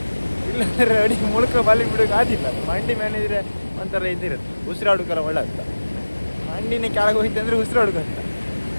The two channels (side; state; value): both; inverted; correlation -1.00